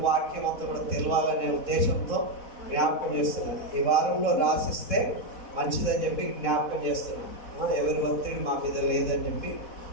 వాక్యం అంతా కూడా తెలవాలనే ఉద్దేశంతో జ్ఞాపకం చేస్తున్నాను. ఈ వారంలో రాసిస్తే మంచిదని చెప్పి జ్ఞాపకం చేస్తున్నాను. ఎవరి ఒత్తిడి మా మీద లేదని చెప్పి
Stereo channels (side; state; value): right; late; 4.1 ms